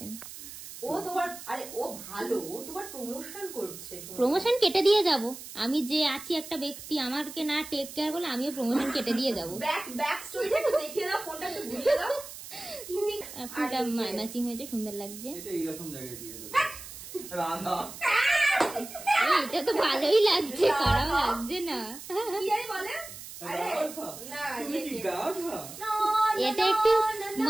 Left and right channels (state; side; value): noise; right; hiss, 13 dB below the sound